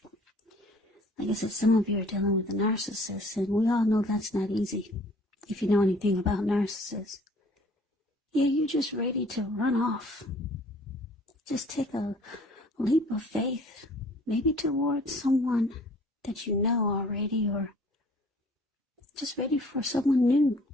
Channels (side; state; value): both; normal; correlation 0.54